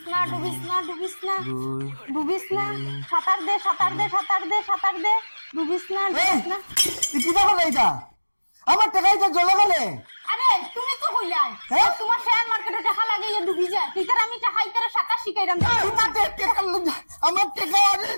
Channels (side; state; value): both; inverted; correlation -1.00